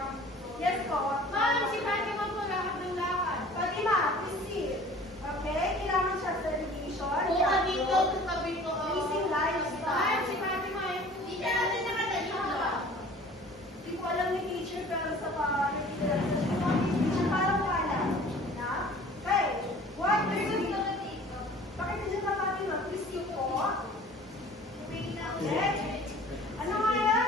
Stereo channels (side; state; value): both; normal; correlation 0.47